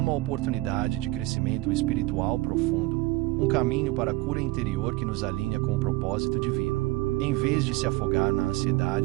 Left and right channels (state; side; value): quieter; left; 20.0 dB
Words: oportunidade de crescimento espiritual profundo, um caminho para a cura interior que nos alinha com o propósito divino. Em vez de se afogar na